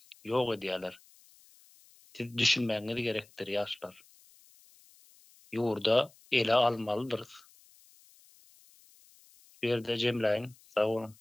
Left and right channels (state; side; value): noise; left; hiss, 27 dB below the sound